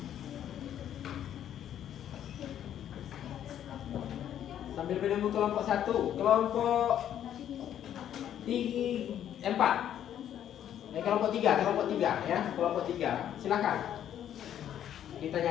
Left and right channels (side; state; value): right; quieter; 10.5 dB